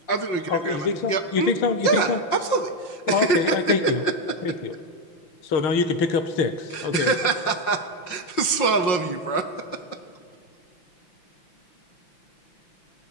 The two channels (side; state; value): right; late; 5.6 ms